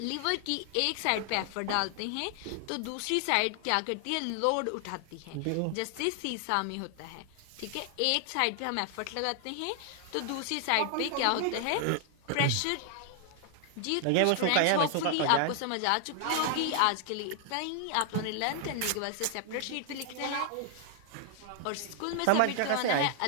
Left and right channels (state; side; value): different; both; correlation 0.00